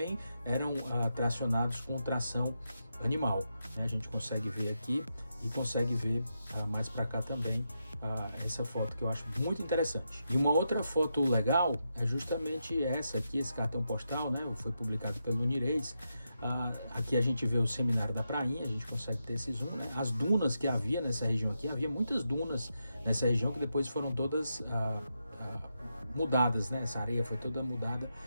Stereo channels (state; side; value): inverted; both; correlation -0.85